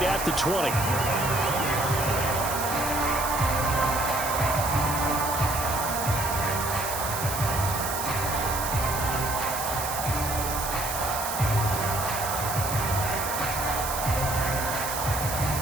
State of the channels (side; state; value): right; noise; hiss, 5 dB below the sound